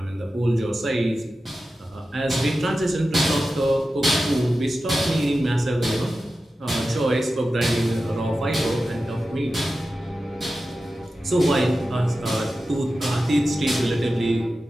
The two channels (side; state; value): both; normal; correlation 0.93